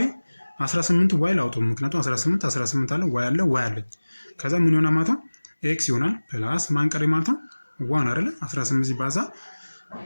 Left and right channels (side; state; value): both; inverted; correlation -1.00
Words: 18 ዋይ ላውጣው ምክንያቱም 18 አለ ዋይ አለ ዋይ አለ። ከዛ ምን ይሆናል ማለት ነው ኤክስ ይሆናል ፕላስ ማን ቀሪ ማለት ነው 1 አይደል 18 ሲባዛ